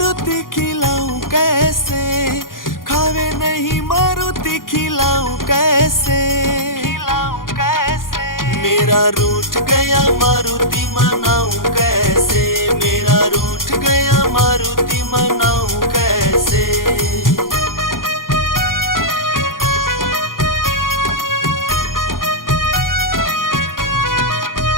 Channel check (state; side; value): late; right; 0.90 ms